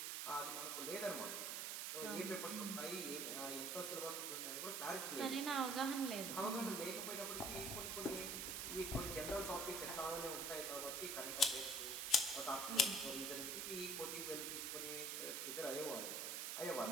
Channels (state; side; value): noise; right; hiss, 1 dB below the sound